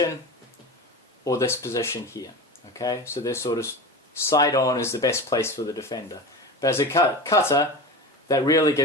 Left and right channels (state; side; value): normal; both; correlation 0.29